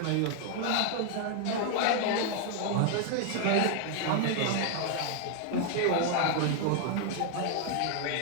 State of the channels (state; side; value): different; both; correlation 0.00